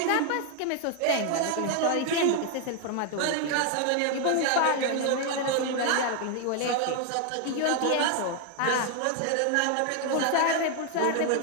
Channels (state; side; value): different; both; correlation 0.00